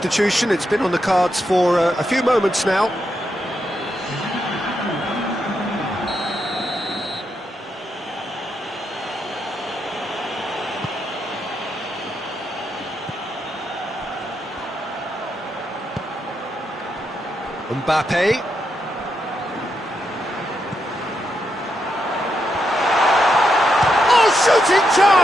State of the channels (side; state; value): both; normal; correlation 0.82